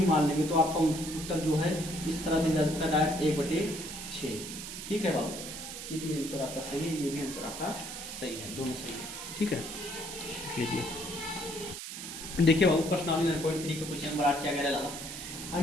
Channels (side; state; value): right; noise; hiss, 8 dB below the sound